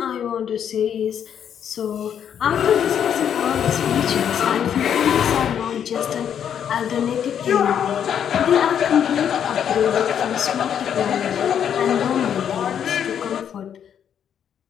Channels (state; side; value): quieter; right; 8.8 dB